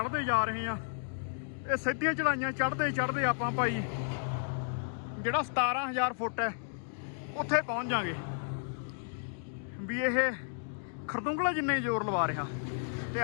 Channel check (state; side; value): silent; right; digital silence